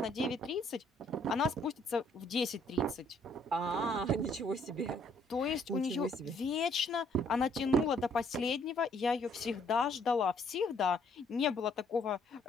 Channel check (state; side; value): normal; both; correlation 0.66